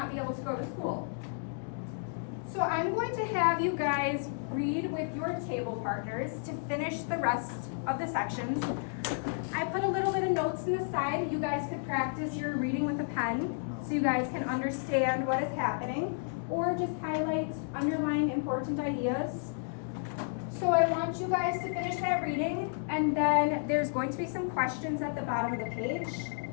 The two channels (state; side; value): silent; right; digital silence